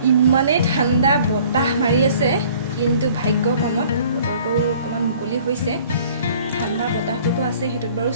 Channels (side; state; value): both; inverted; correlation -0.53